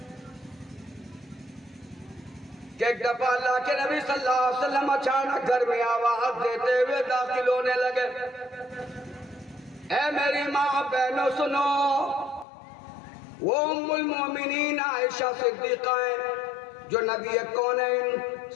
کہ ایک دفعہ اللہ کے نبی صلی اللہ علیہ وسلم اچانک گھر میں آواز دیتے ہوئے داخل ہونے لگے، اے میری ماں بہنوں سنو، وہ ام المومنین عائشہ صدیقہ ہیں جو نبی کونین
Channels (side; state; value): right; drops out; at 12.5 s